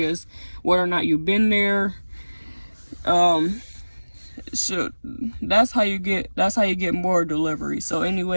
whether or not you've been there. So that's how you get more delivery. So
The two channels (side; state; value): both; inverted; correlation -1.00